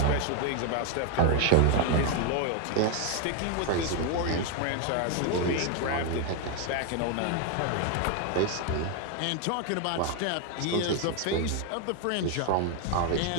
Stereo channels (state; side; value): different; both; correlation 0.01